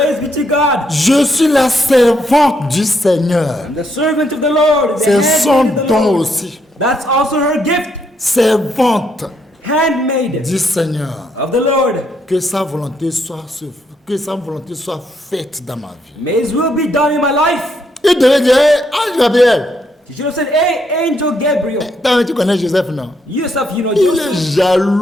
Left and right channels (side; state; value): both; normal; correlation 0.75